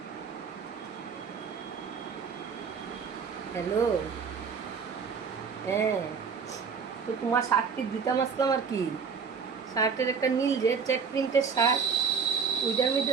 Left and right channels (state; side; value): quieter; left; 5.9 dB